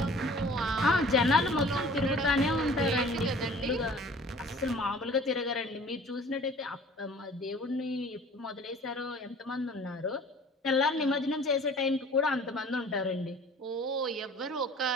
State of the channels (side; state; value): both; normal; correlation 0.48